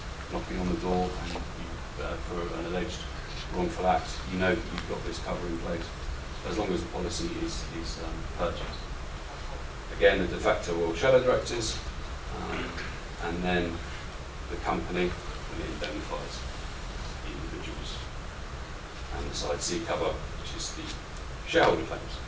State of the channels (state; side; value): identical; both; correlation 1.00